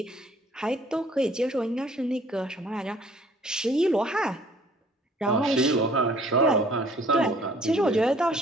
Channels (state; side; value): normal; both; correlation 0.57